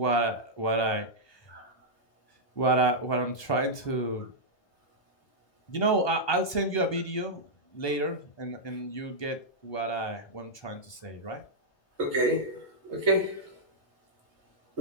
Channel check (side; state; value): right; late; 1.2 ms